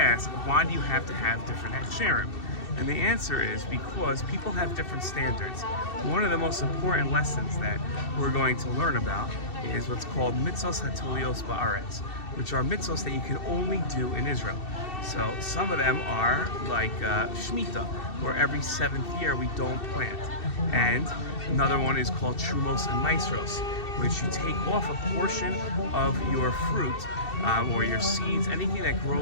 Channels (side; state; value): right; late; 2.7 ms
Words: why do you have to have different hechsherim? And the answer is because people have different standards. One of the most important lessons that we're going to learn about is what's called mitzvos hatolios ba'aretz, which are mitzvos that you can only do in Israel. So some of them are like Shemitah, where every 7th year we don't plant. And another one is called Trumos and Maisros, which you take off a portion of your fruit or your seeds, anything that